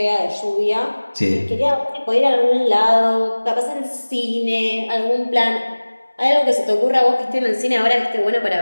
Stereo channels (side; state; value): both; inverted; correlation -1.00